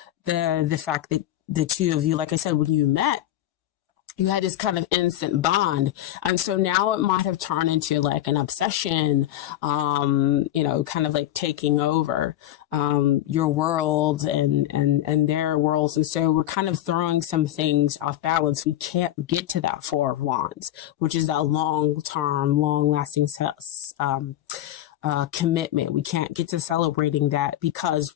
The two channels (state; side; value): quieter; right; 13.4 dB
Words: the fact that the two of you, like I said, when you met, you had this kind of instant bond. And so now it might have turned into like an obsession, kind of like taking over, your world and their worlds. And so we're kind of throwing some things off balance. We can't get to that Four of Wands, which is that long-term, long-lasting, commitment. We can't get to celebrating that